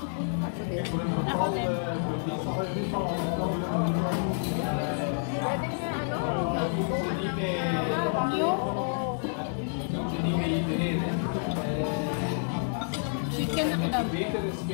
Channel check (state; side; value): silent; right; digital silence